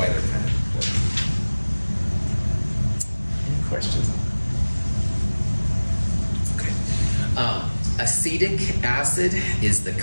they're kind of important. Questions? Okay. Acetic acid is the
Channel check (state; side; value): inverted; both; correlation -1.00